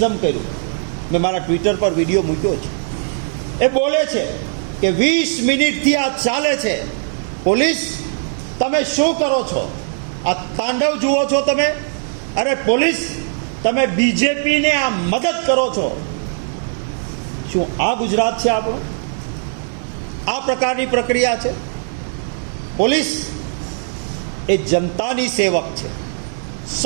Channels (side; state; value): left; silent; digital silence